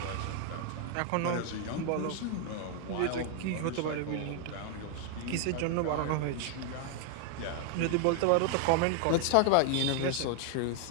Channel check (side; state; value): both; different; correlation 0.00